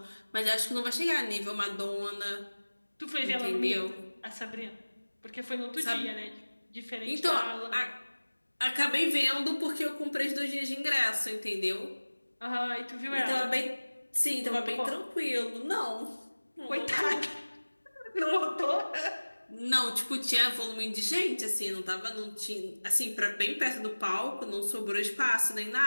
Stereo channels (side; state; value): both; inverted; correlation -1.00